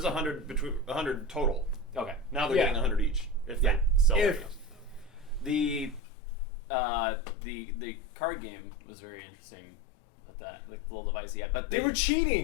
100 total. Okay. Now they're Yeah. getting 100 each if Yeah. they sell If- it. The card game was very interesting with that like the little device he had, but They were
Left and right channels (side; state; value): right; drops out; at 6.0 s